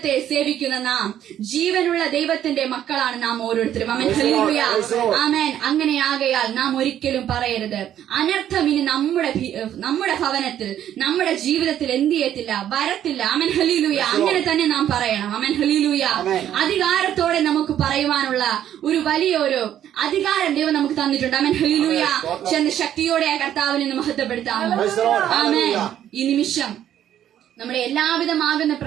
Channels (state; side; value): quieter; left; 10.9 dB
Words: സേവിക്കുന്ന നാം, ജീവനുള്ള ദൈവത്തിന്റെ മക്കളാണ് നാം ഓരോരുത്തരും. ആമേൻ. ഹല്ലേലൂയ. ആമേൻ. അങ്ങനെയാകയാൽ നാം ഒരിക്കലും പറയരുത് അനർത്ഥം ഇനി നമ്മുടെ ഭവനത്തിൽ, നമ്മുടെ ജീവിതത്തിൽ എന്ത് ചെയ്യത്തില്ല, വരത്തില്ല. ആമേൻ. ഹല്ലേലൂയ. അങ്ങനെ തന്നെ നാം പറയണം. ആമേൻ. ഹല്ലേലൂയ. അധികാരത്തോടെ നമുക്ക് പറയുവാനുള്ള ഒരു വലിയൊരു അധികാരം ദൈവം നമുക്ക് തന്നിട്ടുണ്ട്. ആമേൻ. ഹല്ലേലൂയ. ചെന്ന് ശക്തിയോടെ ആ കർത്താവിനെ മഹത്വപ്പെടുത്താം. ആമേൻ. ഈ നിമിഷം നമ്മുടെ എല്ലാവിധമാകുന്ന